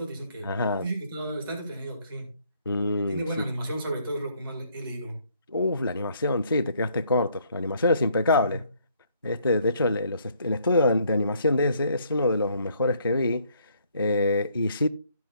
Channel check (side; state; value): both; inverted; correlation -0.66